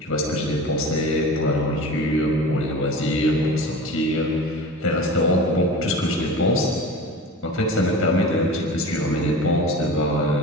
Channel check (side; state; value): both; normal; correlation 0.34